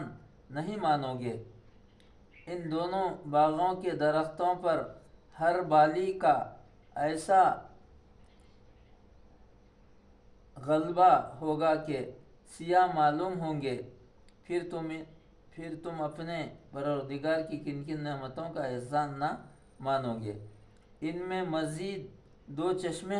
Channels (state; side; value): identical; both; correlation 1.00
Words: نہیں مانو گے؟ ان دونوں باغوں کے درختوں پر ہر بالی کا ایسا غلبہ ہوگا کہ سیاہ معلوم ہوں گے۔ پھر تم اپنے پروردگار کی کن کن نعمتوں کا احسان نہ مانو گے؟ ان میں مزید دو چشمے